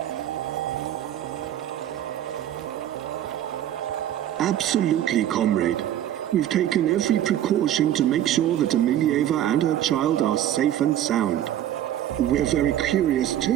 Absolutely, comrade. We've taken every precaution to make sure that Emilieva and her child are safe and sound. We're very curious,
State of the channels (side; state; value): left; quieter; 11.6 dB